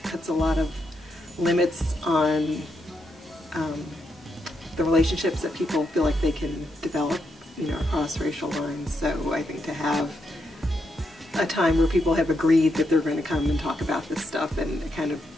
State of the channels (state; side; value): normal; both; correlation 0.81